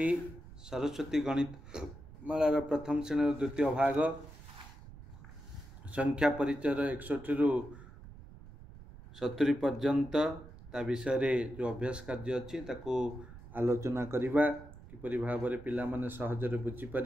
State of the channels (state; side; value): noise; right; rumble, 17 dB below the sound